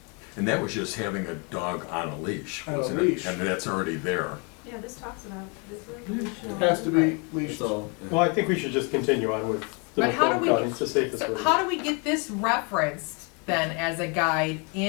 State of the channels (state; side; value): quieter; right; 33.8 dB